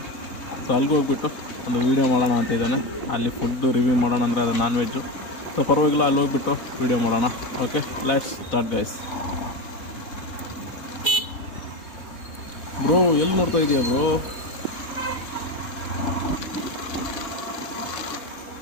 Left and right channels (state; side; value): late; right; 3.7 ms